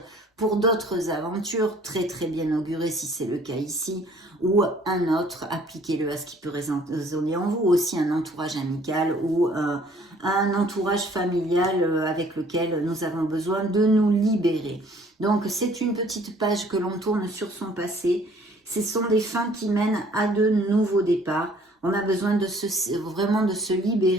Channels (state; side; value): normal; both; correlation 0.57